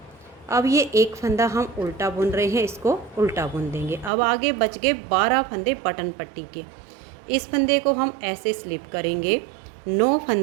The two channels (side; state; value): left; drops out; at 4.1 s